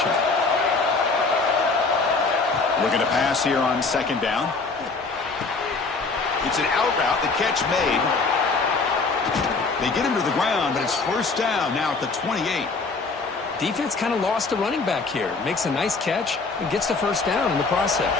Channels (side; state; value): right; quieter; 4.1 dB